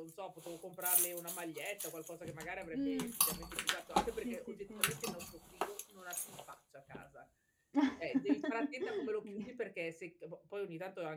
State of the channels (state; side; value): identical; both; correlation 1.00